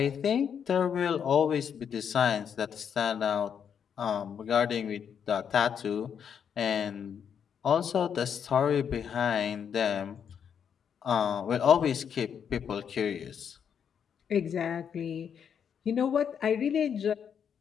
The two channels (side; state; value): right; quieter; 7.7 dB